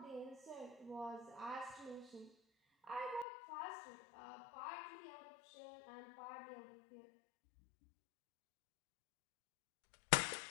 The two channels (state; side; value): drops out; right; at 3.2 s